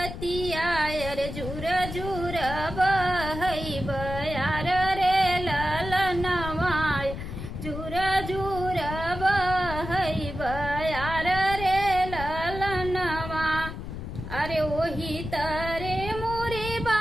रे झूर झूर बहई बयार रे ललनवा झूर झूर बहई बयार रे ललनवा। अरे वही तरे मोरे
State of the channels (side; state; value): left; noise; rumble, 8 dB below the sound